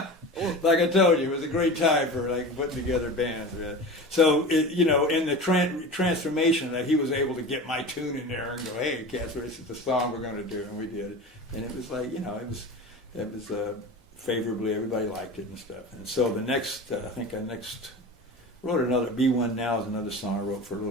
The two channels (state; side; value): normal; both; correlation 0.32